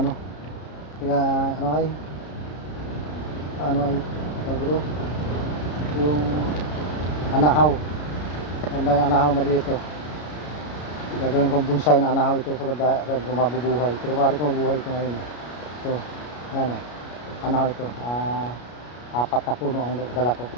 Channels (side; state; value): right; late; 33 ms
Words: ano. Kaya, ano ay, dito, yung anahaw. Ang anahaw maliit ito. Gagawin kong bonsai na anahaw ito sa mabubuhay. Pero pare ko mabuhay ito ngayon. Ito, ano, anahaw ito. 4 na puno ang dala ko